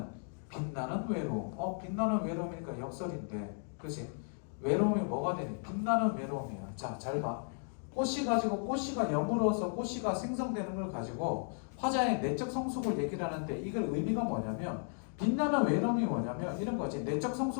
빛나는 외로움. 빛나는 외로움이니까 역설인데 그치? 외로움이 뭐가 되니? 빛나는 외로움이야. 자, 잘 봐. 꽃이가 여물어서 꽃이가 생성되는 걸 가지고 화자의 내적 성숙을 얘기를 하는데 이걸 의미가 뭐냐면 빛나는 외로움이 뭐냐면 이런 거지. 내적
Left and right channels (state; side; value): silent; right; 54 dB below the other